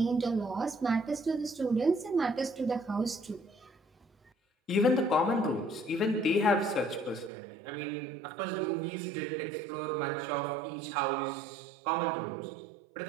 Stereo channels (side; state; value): left; drops out; at 7.3 s